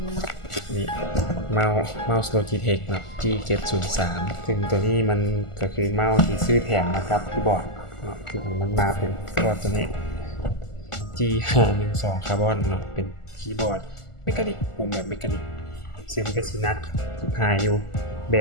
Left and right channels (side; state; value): right; late; 1.4 ms